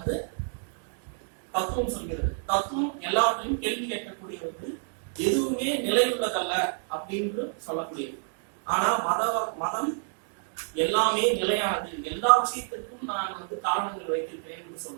தத்துவம் சொல்கிறது. தத்துவம் எல்லாத்தையும் கேள்வி கேட்கக்கூடியது, எதுவுமே நிலையுள்ளதல்ல அப்படின்னு சொல்லக்கூடியது. ஆனா மதம் எல்லாமே நிலையானது, எல்லா விஷயத்திற்கும் நான் வந்து காரணங்கள் வைத்திருக்கிறேன் என்று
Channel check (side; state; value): left; silent; 59 dB below the other